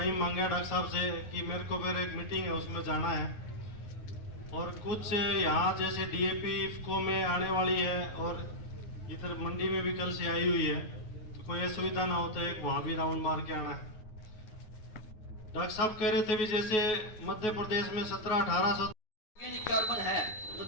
मांगा डॉक्टर साहब से कि मेरे को फिर एक मीटिंग है, उसमें जाना है, और कुछ यहाँ जैसे डीएपी इफको में आने वाली है, और इधर मंडी में भी कल से आई हुई है, तो कोई असुविधा ना हो तो एक वहाँ भी राउंड मार के आना है। डॉक्टर साहब कह रहे थे भी जैसे मध्य प्रदेश में 17-1800 ऑर्गेनिक कार्बन है, तो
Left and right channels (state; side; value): late; right; 9.3 ms